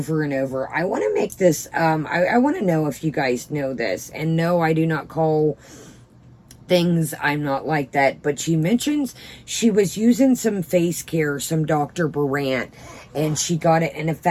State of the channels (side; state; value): both; identical; correlation 1.00